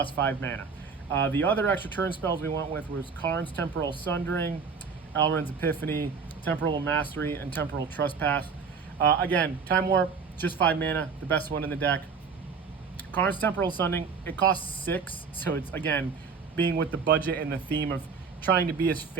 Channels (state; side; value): quieter; left; 5.5 dB